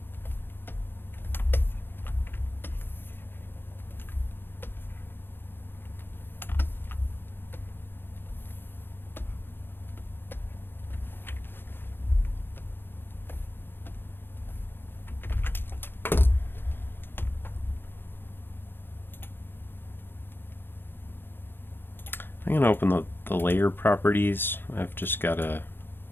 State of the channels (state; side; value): late; right; 0.098 ms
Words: I'm going to open the layer properties. I've just got